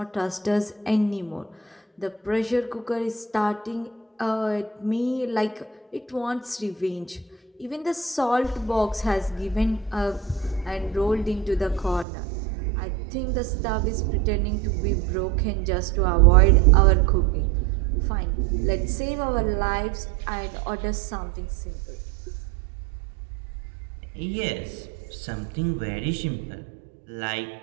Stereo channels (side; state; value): left; drops out; at 12.1 s